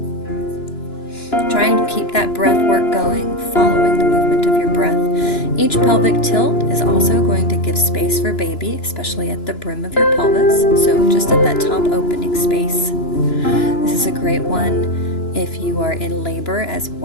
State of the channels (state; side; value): late; right; 2.9 ms